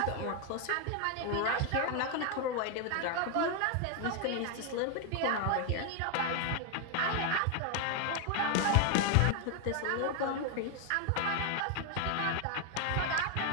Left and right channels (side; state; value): both; different; correlation 0.01